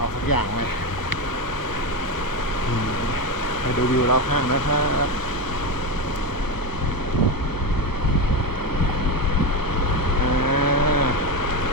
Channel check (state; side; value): late; right; 1.0 ms